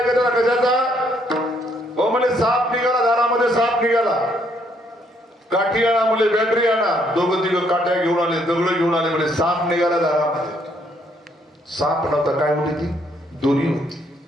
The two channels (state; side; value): normal; both; correlation 0.69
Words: कशाचा. हो म्हणजे साप निघाला, दारामध्ये साप निघाला. काठी आणा म्हणजे बॅटरी आणा. दोघं तिघं काठ्या घेऊन आले, दगड घेऊन आले, म्हणजे साप निघाला दारामध्ये. साप नव्हता, काय होती ती? दोरी होती.